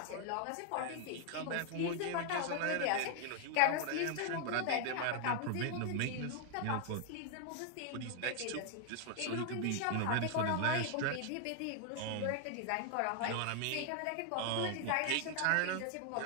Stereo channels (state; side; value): different; both; correlation 0.00